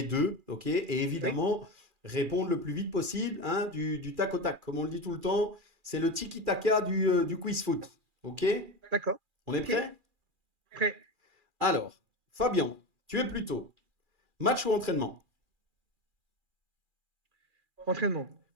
deux, ok? Et Oui, évidemment, répondre le plus vite possible, hein, du tac au tac. Comme on le dit tout le temps, c'est le tiki-taka du quiz foot, ok? d'accord. On est Ok, prêt? prêt. Alors, Fabien, tu es plutôt match ou entraînement? Entraînement.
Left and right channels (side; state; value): left; late; 2.4 ms